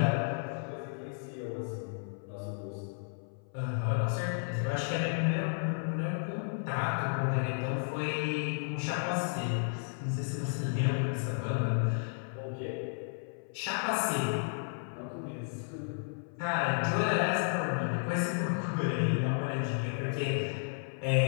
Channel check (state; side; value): silent; right; 56 dB below the other